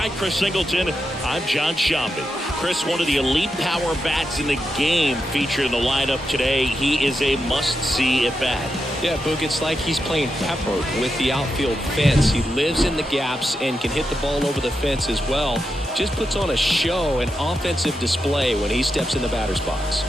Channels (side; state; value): both; normal; correlation 0.86